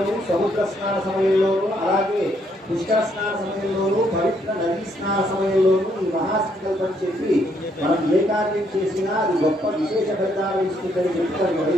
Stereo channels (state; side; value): normal; both; correlation 0.72